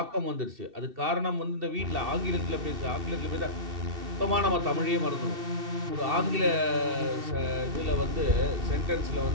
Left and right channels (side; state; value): left; late; 2.7 ms